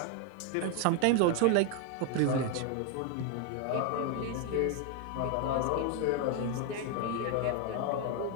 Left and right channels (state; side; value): different; both; correlation 0.01